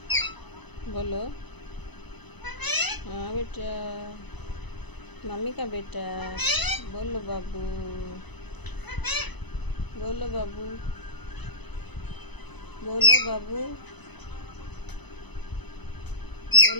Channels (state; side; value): late; right; 1.0 ms